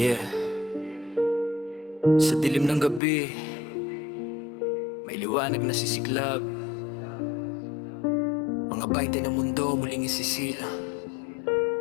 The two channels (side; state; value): right; drops out; at 3.0 s